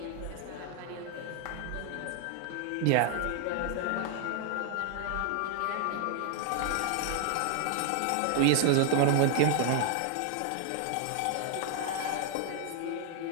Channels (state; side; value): different; both; correlation 0.00